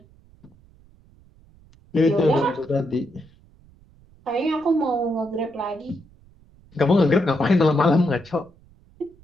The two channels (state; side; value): noise; right; rumble, 28 dB below the sound